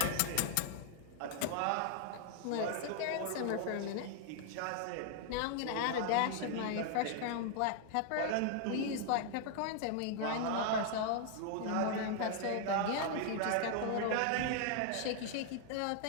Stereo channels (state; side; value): different; both; correlation 0.00